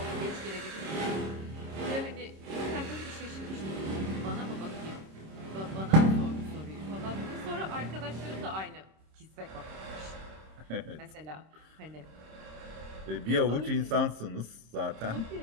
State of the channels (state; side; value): late; left; 26 ms